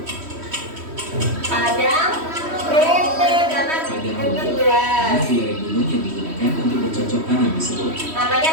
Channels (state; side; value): late; left; 3.1 ms